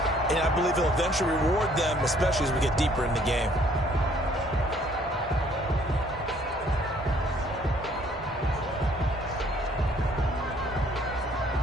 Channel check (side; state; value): both; normal; correlation 0.61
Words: and I believe he'll eventually reward them, especially as we get deeper in the game.